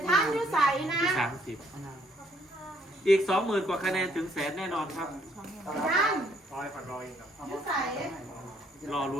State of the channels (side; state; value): both; normal; correlation 0.68